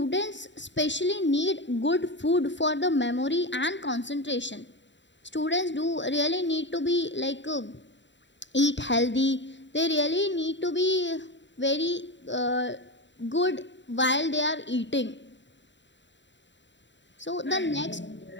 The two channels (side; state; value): right; late; 0.53 ms